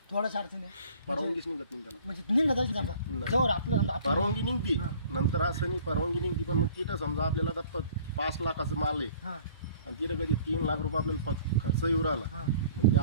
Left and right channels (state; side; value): inverted; both; correlation -0.52